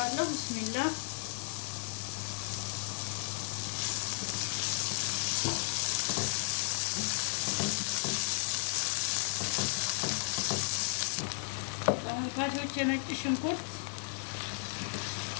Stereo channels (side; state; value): right; silent; digital silence